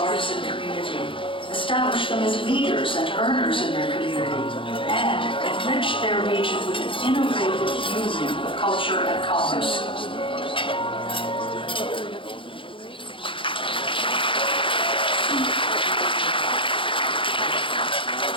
community, established them as leaders and earners in their community, and enriched their region with an innovative union of culture and commerce.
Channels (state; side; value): late; right; 0.25 ms